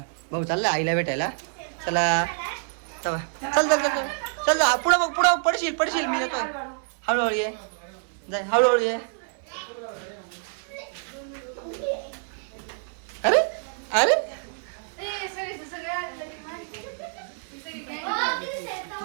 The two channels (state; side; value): silent; left; 60 dB below the other